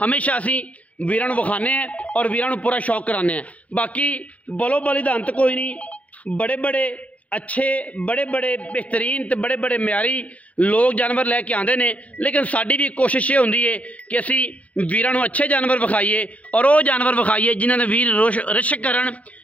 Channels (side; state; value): right; late; 0.068 ms